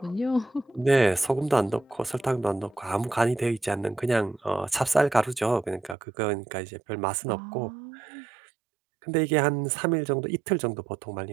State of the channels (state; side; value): drops out; left; at 6.0 s